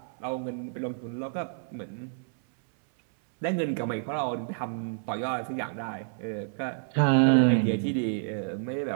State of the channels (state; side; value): silent; left; 59 dB below the other